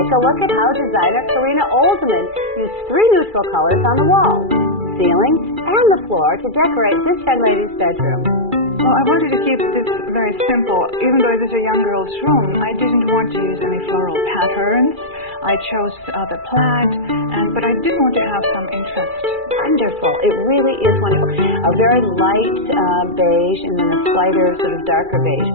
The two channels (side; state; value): left; late; 2.4 ms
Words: a look at how designer Karina Oldman used 3 neutral colors on the walls, ceiling, and the floor to decorate this young lady's bedroom. Well, I wanted to keep this very simple. Even though it is a young girl's room, I didn't want to use any floral patterns. I chose the plaid, but I did want to have some interest. Wonderful. It really is wonderful. A very light beige and then a slighter sort of darker beige,